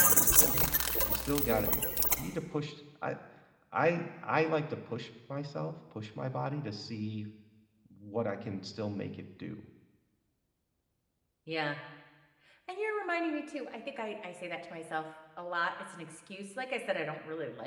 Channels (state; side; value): identical; both; correlation 1.00